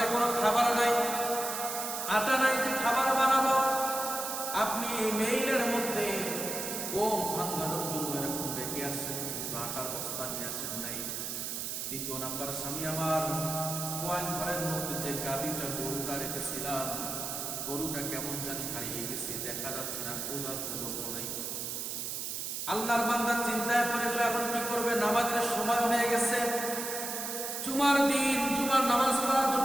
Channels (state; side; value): noise; right; hiss, 4 dB below the sound